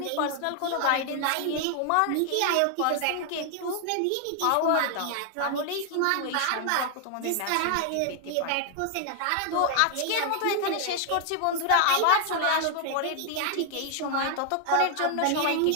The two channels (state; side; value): different; both; correlation 0.00